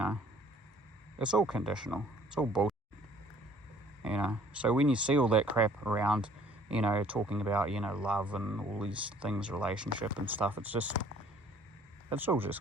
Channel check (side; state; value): both; normal; correlation 0.56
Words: It's all conditional. It's all bullshit, you know. So when you see all that crap around, you know, talking about, you know, love and all these things, relationship and stuff, it's all